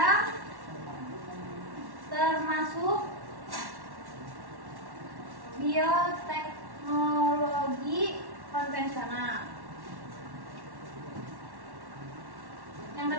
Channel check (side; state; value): left; late; 1.1 ms